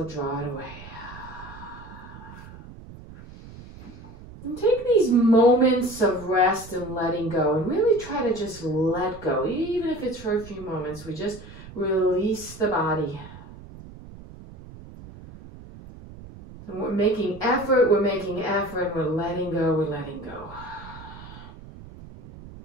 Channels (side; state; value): right; noise; rumble, 16 dB below the sound